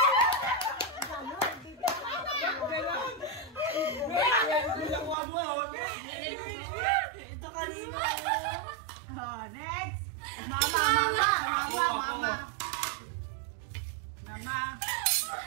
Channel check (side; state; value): left; drops out; at 5.2 s